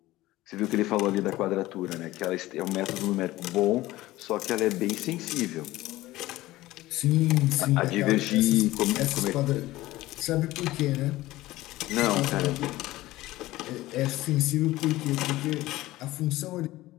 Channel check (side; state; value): right; quieter; 17.3 dB